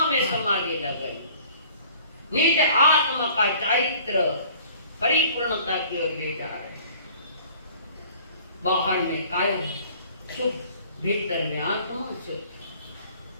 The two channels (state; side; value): inverted; both; correlation -0.51